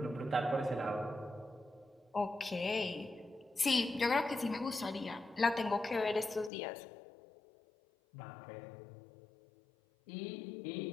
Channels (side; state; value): right; drops out; at 6.5 s